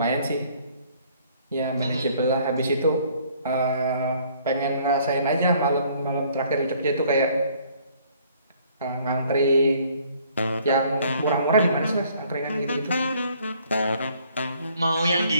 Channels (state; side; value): inverted; both; correlation -0.61